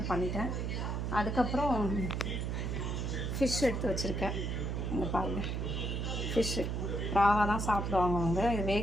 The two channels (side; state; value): right; noise; hum, 1 dB below the sound